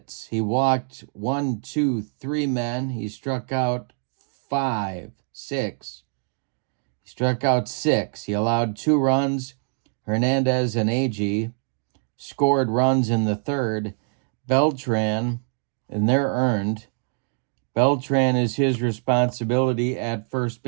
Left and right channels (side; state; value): left; silent; 62 dB below the other